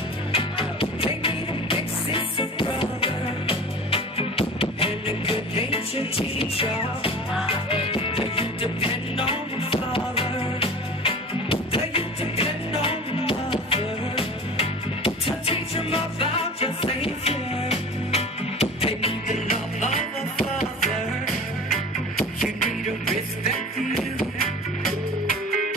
They need a big sister, brother, and a good natured teacher. The youth depend on the father. The youth depend on the mother to teach them about your Savior. They need the love of a father. You need a respect for you.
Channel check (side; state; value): both; normal; correlation 0.38